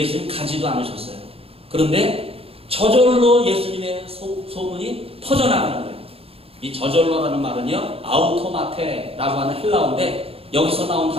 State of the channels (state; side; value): late; left; 0.28 ms